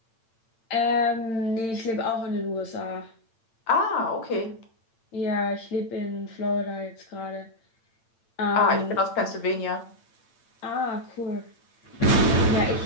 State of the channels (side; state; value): right; late; 8.9 ms